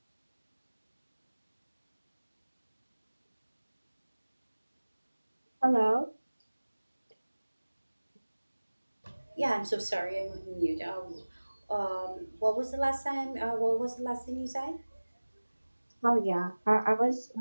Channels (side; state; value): both; inverted; correlation -1.00